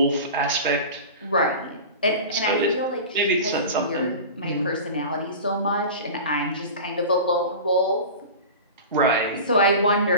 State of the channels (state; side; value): inverted; both; correlation -0.32